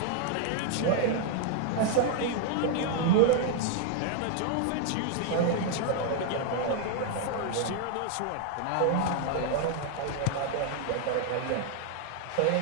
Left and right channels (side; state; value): both; different; correlation 0.00